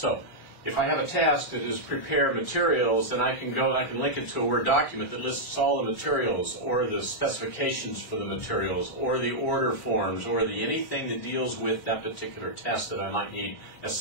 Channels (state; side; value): late; right; 2.3 ms